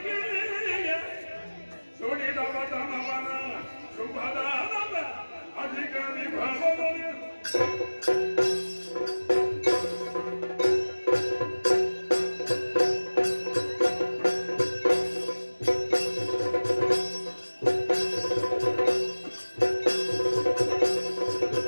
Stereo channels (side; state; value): both; inverted; correlation -1.00